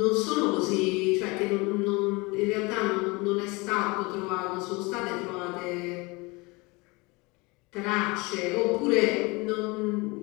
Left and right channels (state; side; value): quieter; right; 25.7 dB